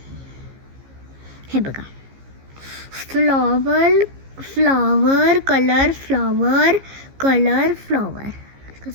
हे बघा, flower flower colour flower colour flower.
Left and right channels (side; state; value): left; late; 15 ms